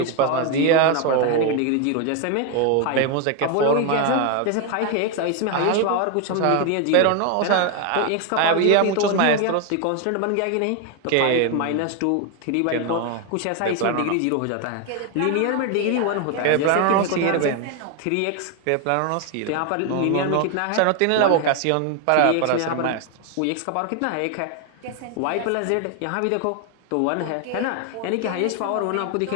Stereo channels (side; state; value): both; different; correlation 0.01